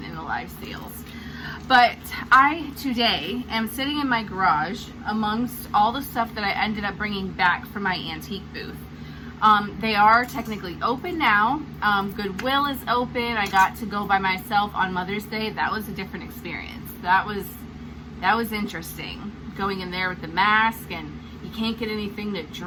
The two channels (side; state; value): both; identical; correlation 1.00